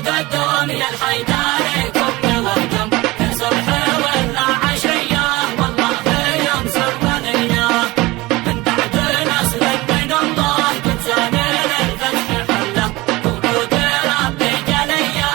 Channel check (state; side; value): quieter; left; 20.8 dB